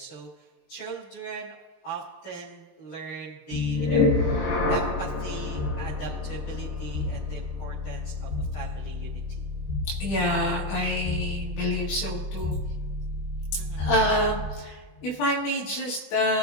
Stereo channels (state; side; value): late; right; 20 ms